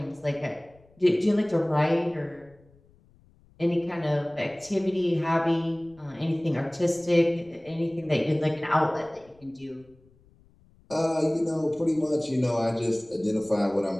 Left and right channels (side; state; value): left; noise; rumble, 29 dB below the sound